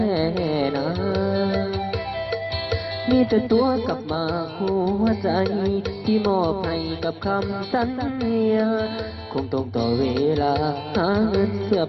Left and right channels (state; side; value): identical; both; correlation 1.00